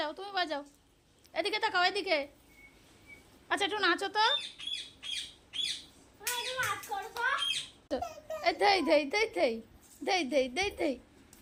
তুমি বাজাও। এদিকে তাকাও, এদিকে। আচ্ছা একটু নাচো তো। দেই দেই দেই দেই দেই দেই দেই দেই।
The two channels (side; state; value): both; identical; correlation 1.00